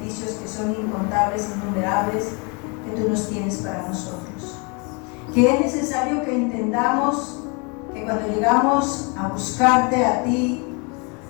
que son incontables, innumerables, que tú nos tienes para nosotros. Que es necesario que entendamos que cuando llegamos a buscarte a ti,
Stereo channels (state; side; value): quieter; right; 32.3 dB